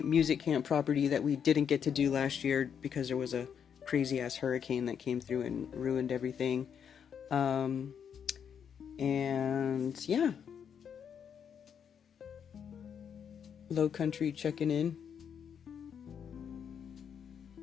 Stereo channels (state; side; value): quieter; right; 7.7 dB